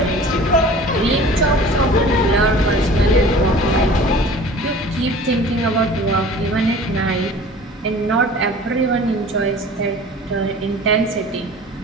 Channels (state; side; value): normal; both; correlation 0.44